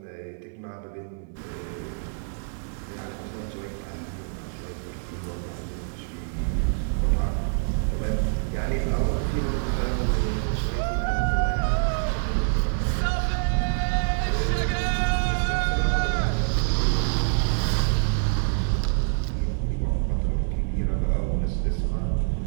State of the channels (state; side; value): silent; left; digital silence